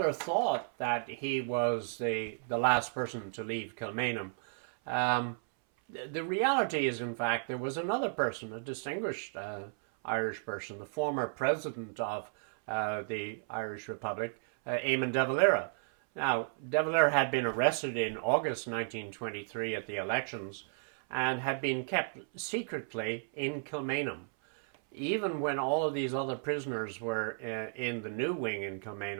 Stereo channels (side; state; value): left; silent; 55 dB below the other